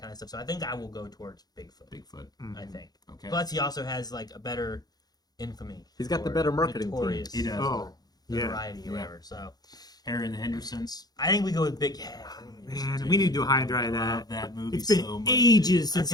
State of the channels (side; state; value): right; late; 0.19 ms